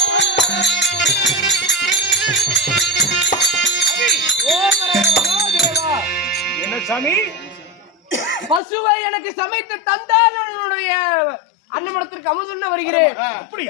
என்ன சாமி? பசுவை எனக்கு சமைத்து தந்தால் என்னுடைய அன்னமடத்திற்கு அமுதுண்ண வருகிறேன்.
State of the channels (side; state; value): right; drops out; at 8.6 s